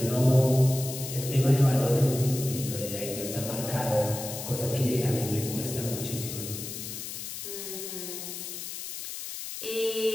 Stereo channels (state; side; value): noise; left; hiss, 8 dB below the sound